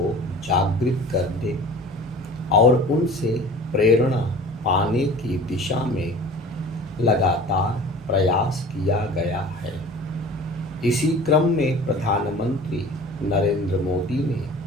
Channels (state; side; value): normal; both; correlation 0.42